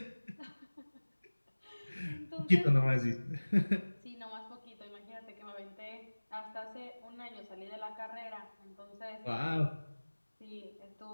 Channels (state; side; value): inverted; both; correlation -1.00